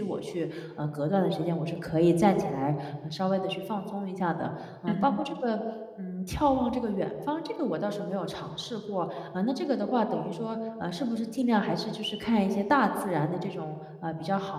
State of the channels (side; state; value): both; identical; correlation 1.00